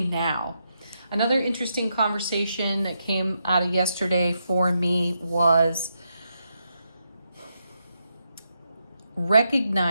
now. Another interesting conversation that came out of yesterday for me was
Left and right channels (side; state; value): both; inverted; correlation -0.82